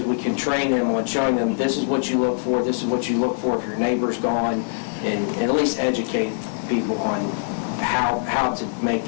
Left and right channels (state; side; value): silent; right; 64 dB below the other